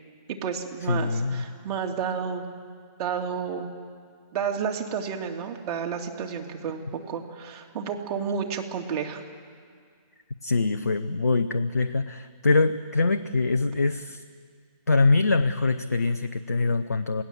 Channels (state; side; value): inverted; both; correlation -0.73